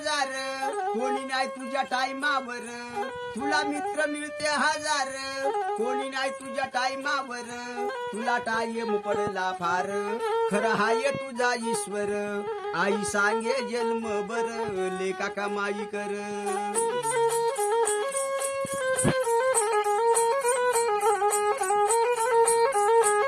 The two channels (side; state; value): both; identical; correlation 1.00